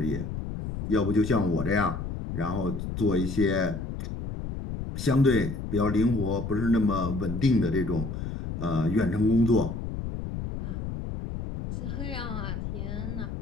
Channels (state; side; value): noise; left; rumble, 6 dB below the sound